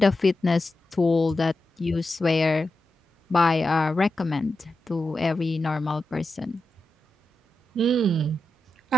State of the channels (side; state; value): both; normal; correlation 0.89